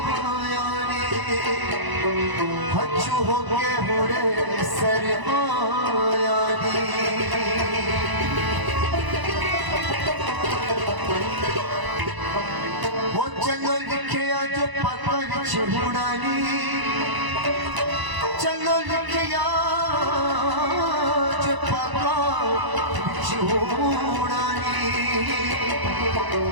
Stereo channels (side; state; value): left; late; 1.0 ms